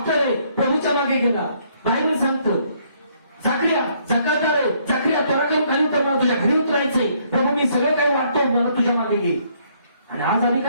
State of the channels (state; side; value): inverted; both; correlation -0.67